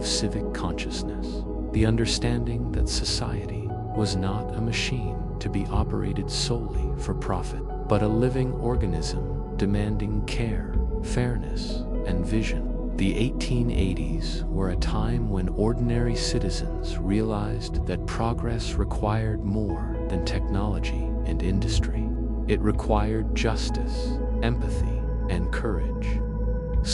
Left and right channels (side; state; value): both; identical; correlation 1.00